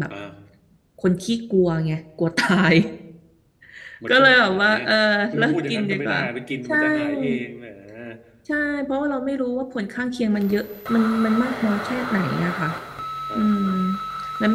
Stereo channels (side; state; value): both; identical; correlation 1.00